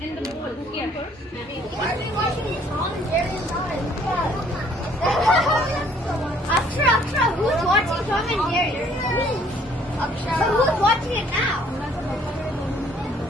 in the bowl. Here. Why are we watching this all in Jerry's eyes? Akshara, who's watching Tom and Jerry? Akshara. So who's watching it now?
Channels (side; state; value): both; normal; correlation 0.61